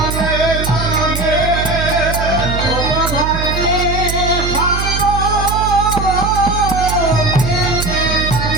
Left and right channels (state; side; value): noise; right; hum, 3 dB below the sound